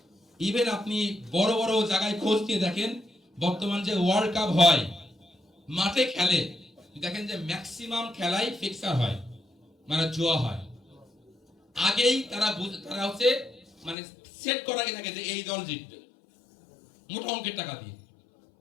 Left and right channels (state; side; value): drops out; right; at 14.0 s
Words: ইভেন আপনি বড় বড় জায়গায় খোঁজ দিয়ে দেখেন, বর্তমান যে ওয়ার্ল্ড কাপ হয়, মাঠে খেলে, দেখেন যে ম্যাক্সিমাম খেলাই ফিক্সার হয়, মানে জুয়া হয়। আগেই তারা হচ্ছে মানে সেট করা থাকে যে এই দল জিতবে মোটা অঙ্কের টাকা দিয়ে।